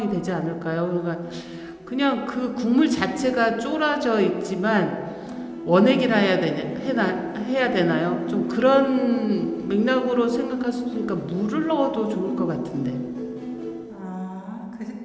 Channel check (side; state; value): both; identical; correlation 1.00